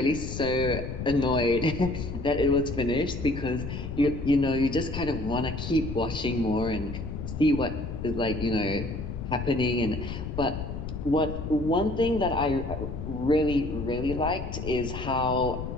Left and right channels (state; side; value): noise; left; rumble, 6 dB below the sound